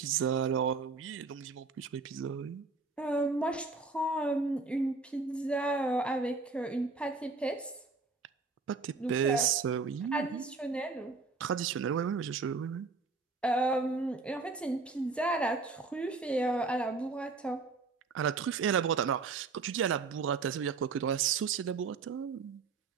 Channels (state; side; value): quieter; left; 4.3 dB